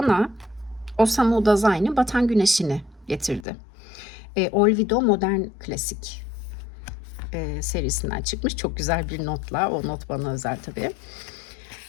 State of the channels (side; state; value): right; drops out; at 3.5 s